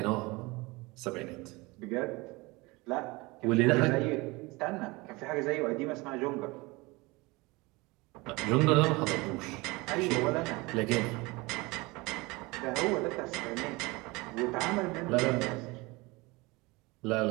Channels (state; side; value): quieter; left; 23.8 dB